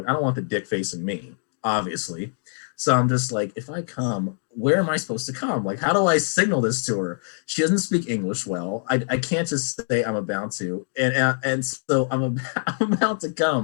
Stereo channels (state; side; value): silent; right; digital silence